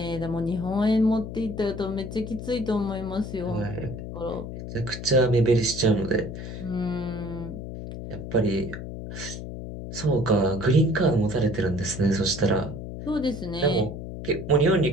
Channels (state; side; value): noise; left; hum, 8 dB below the sound